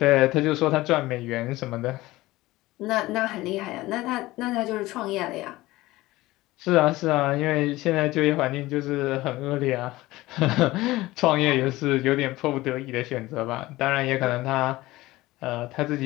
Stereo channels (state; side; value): quieter; right; 18.5 dB